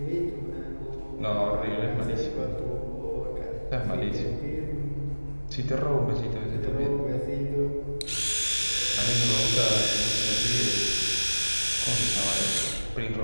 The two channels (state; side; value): inverted; both; correlation -1.00